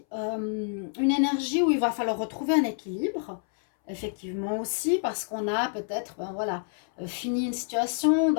une énergie où il va falloir retrouver un équilibre, effectivement aussi, parce qu'on a peut-être, fini une situation, on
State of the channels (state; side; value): silent; right; 59 dB below the other